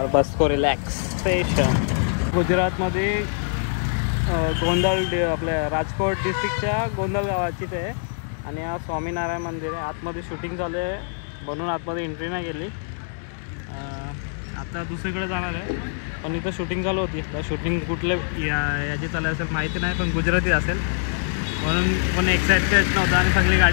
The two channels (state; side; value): silent; right; digital silence